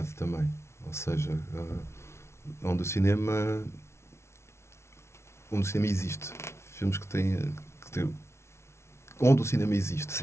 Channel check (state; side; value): late; right; 0.13 ms